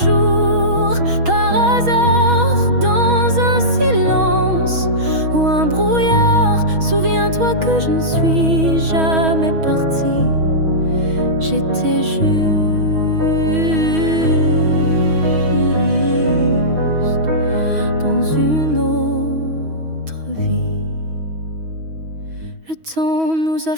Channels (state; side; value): late; left; 6.2 ms